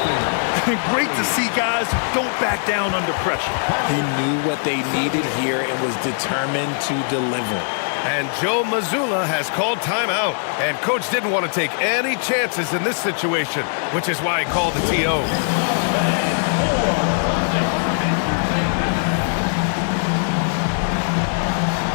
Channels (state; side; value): silent; right; digital silence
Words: Great to see guys who don't back down under pressure. He knew what they needed here and was determined to deliver. And Joe Mazzulla has called timeout. And coach didn't want to take any chances in this situation, which is why he called the TO.